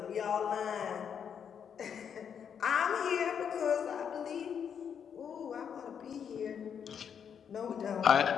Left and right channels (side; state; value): right; quieter; 7.7 dB